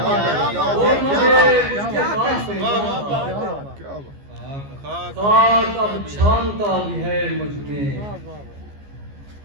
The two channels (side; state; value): left; late; 14 ms